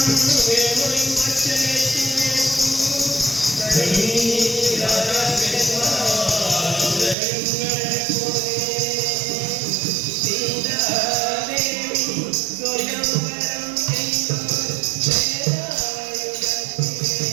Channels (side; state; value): left; drops out; at 7.2 s